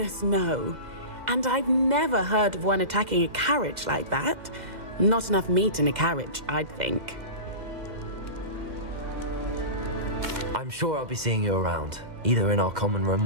no. And I've never heard of one attacking a carriage like that. Not enough meat in a carriage, I'd think. I'm sure I'll be seeing you around, either in our common room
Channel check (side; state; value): left; late; 2.0 ms